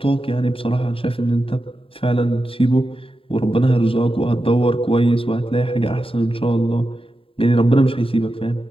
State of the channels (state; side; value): late; right; 0.27 ms